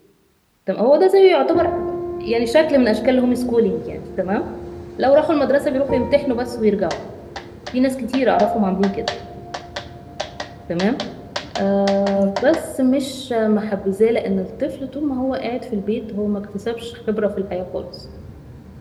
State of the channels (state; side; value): identical; both; correlation 1.00